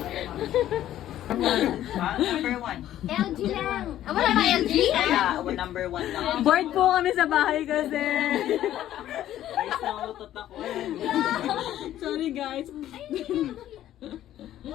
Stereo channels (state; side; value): quieter; right; 12.5 dB